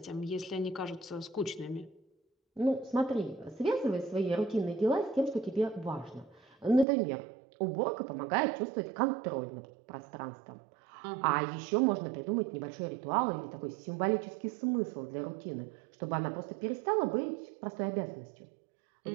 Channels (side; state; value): left; drops out; at 6.9 s